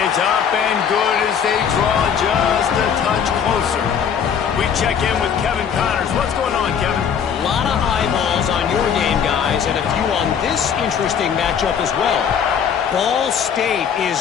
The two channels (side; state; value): right; quieter; 7.6 dB